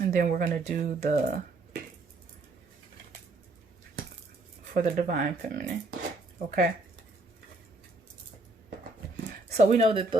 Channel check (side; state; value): left; quieter; 3.0 dB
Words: And then we're going to do for the divine feminine. Okay. So we know that